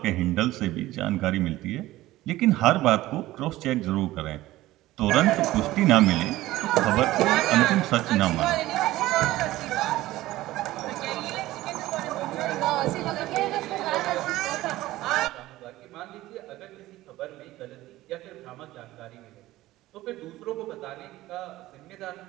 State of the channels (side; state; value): left; quieter; 16.7 dB